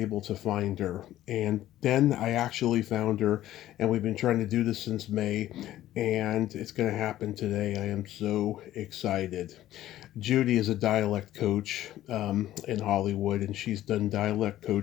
to find her. And then I actually found her, and we've been trying to do this since May, and it's going to happen today. I am so excited. Judi is a dialect coach in Hollywood, and she's done dialect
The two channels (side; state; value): right; quieter; 13.7 dB